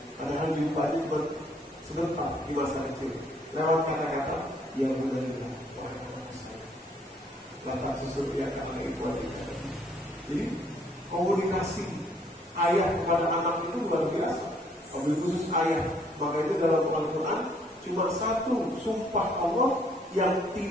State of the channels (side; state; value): both; normal; correlation 0.65